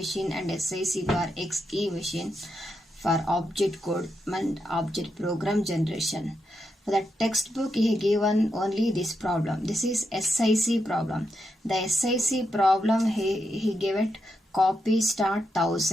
and SIC bar XE machine for object code and object program generation. For the textbook, he given only this problem. This is SIC problem. The SIC problem, he gave it copy start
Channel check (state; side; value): normal; both; correlation 0.84